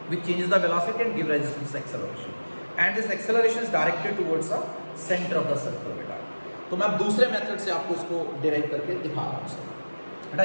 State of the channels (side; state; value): both; inverted; correlation -1.00